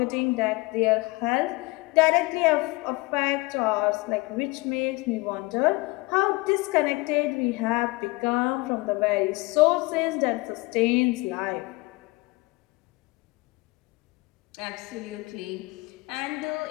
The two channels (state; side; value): quieter; right; 24.1 dB